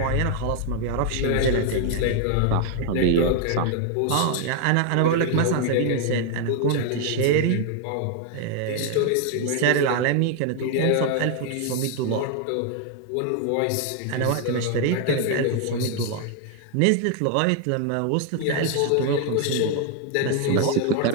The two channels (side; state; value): both; different; correlation 0.00